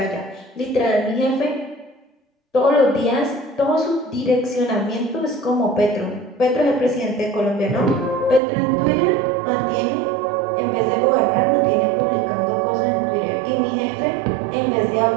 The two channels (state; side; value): drops out; left; at 8.4 s